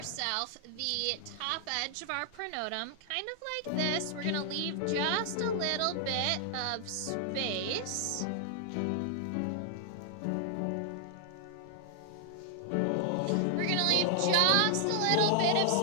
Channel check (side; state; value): both; different; correlation 0.00